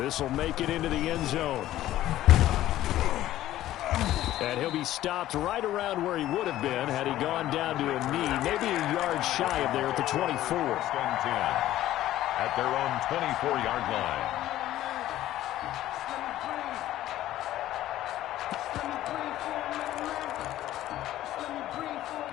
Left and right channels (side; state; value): right; quieter; 14.0 dB